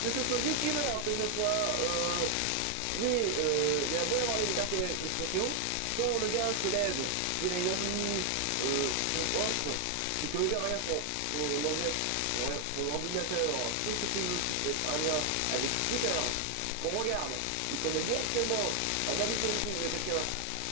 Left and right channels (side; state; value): both; different; correlation 0.00